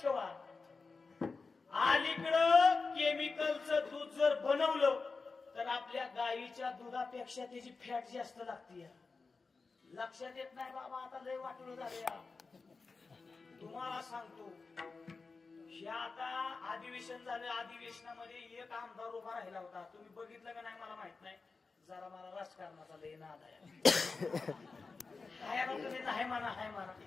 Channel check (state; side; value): quieter; right; 4.3 dB